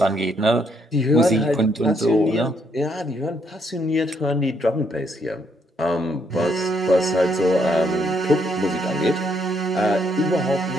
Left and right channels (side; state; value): both; normal; correlation 0.72